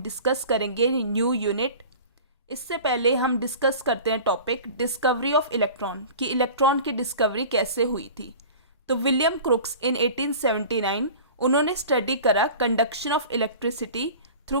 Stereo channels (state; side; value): inverted; both; correlation -0.39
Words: करेंगे न्यू यूनिट। इससे पहले हम डिस्कस करते हैं टॉपिक डिस्कवरी ऑफ इलेक्ट्रॉन कि इलेक्ट्रॉन की डिस्कवरी कैसे हुई थी। तो विलियम क्रुक्स इन 1879 उन्होंने स्टडी करा conduction of electricity through